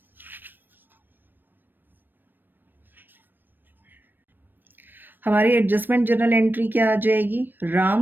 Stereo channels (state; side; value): late; left; 0.093 ms